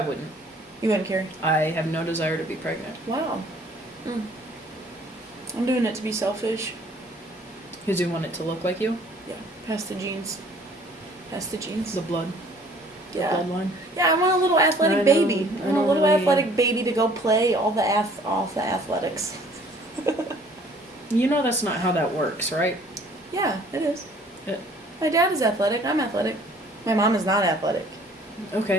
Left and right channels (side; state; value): both; normal; correlation 0.55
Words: You wouldn't carry? I have no desire to be pregnant. Wow. I'm doing it to be selfish. Because you want it to look like you? Yeah. Pass the genes. The blood. Yeah. Bloodline. Yeah, I want a little athletic I baby. know, I want a little really- athletic baby to go play all the athletics. You know that's not how that works, right? Yeah, it is. Yeah. My dad is athletic. I'm athletic. My mom is not athletic.